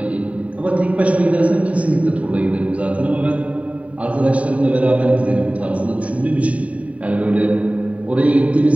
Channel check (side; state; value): left; late; 0.067 ms